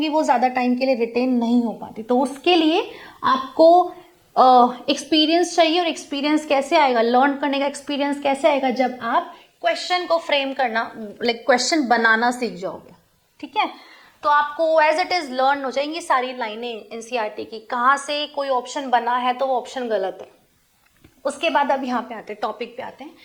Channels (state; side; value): identical; both; correlation 1.00